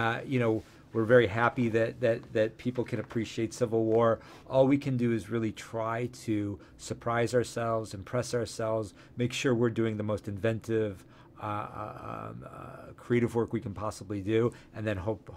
You know, we're very happy that people can appreciate Civil War. All we can do is really try to surprise ourselves, impress ourselves, make sure we're doing the most inventive, creative work we can possibly do, and then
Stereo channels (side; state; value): both; identical; correlation 1.00